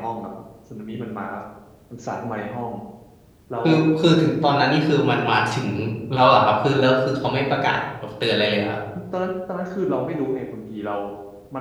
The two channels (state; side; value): identical; both; correlation 1.00